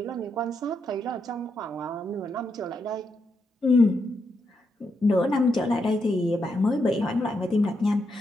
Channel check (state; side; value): normal; both; correlation 0.82